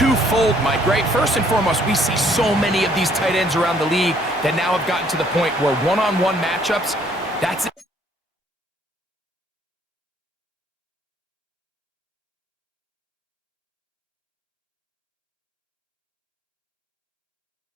Mike, right? First and foremost, we see so many of these tight ends around the league that now have gotten to the point where one-on-one matchups, that's it.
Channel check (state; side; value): normal; both; correlation 0.64